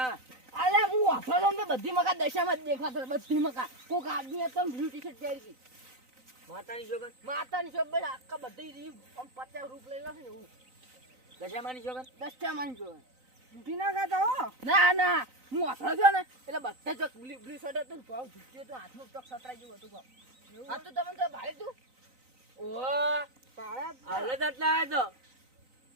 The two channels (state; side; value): late; left; 3.9 ms